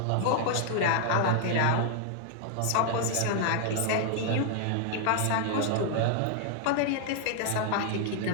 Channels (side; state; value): both; different; correlation 0.00